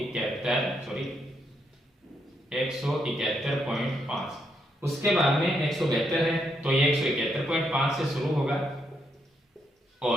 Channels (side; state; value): both; normal; correlation 0.78